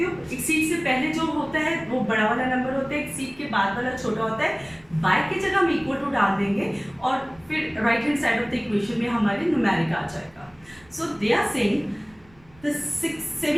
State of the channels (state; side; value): noise; right; rumble, 28 dB below the sound